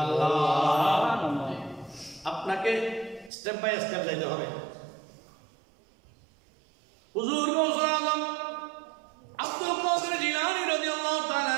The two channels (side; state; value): left; drops out; at 3.3 s